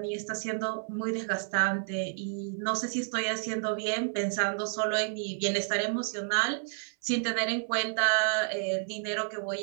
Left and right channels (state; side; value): silent; left; 57 dB below the other